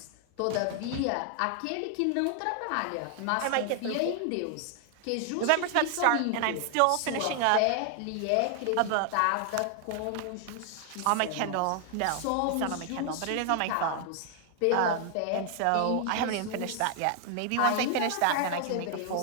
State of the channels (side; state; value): both; different; correlation 0.00